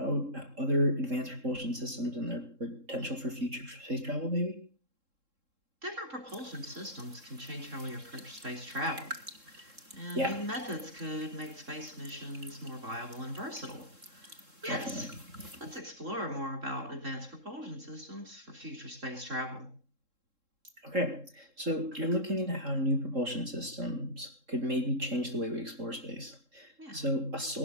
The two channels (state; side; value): late; left; 3.7 ms